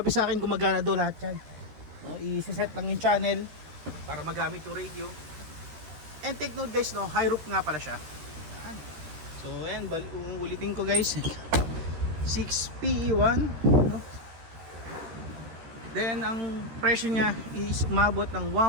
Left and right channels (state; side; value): late; left; 13 ms